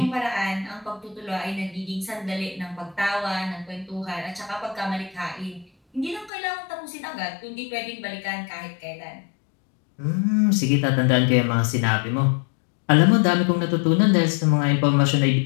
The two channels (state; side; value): drops out; right; at 6.3 s